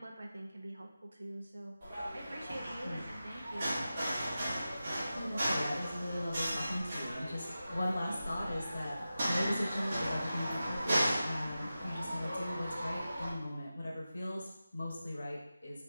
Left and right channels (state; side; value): inverted; both; correlation -0.93